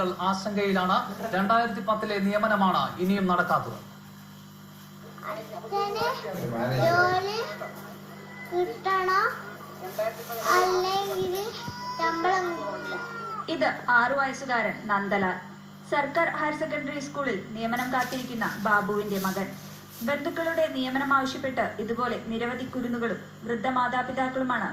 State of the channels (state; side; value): identical; both; correlation 1.00